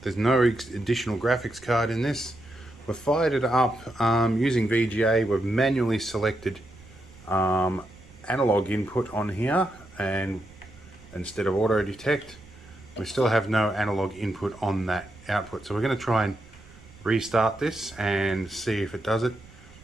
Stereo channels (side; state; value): right; noise; rumble, 22 dB below the sound